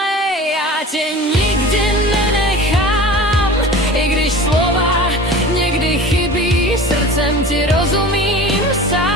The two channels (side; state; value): both; normal; correlation 0.38